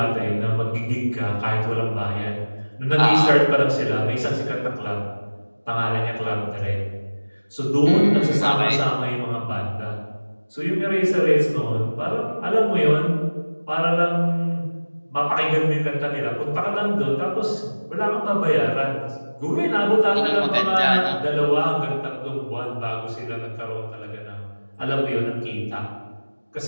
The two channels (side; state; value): both; inverted; correlation -1.00